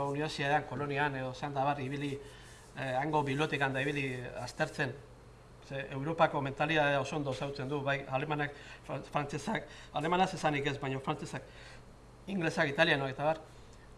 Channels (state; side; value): identical; both; correlation 1.00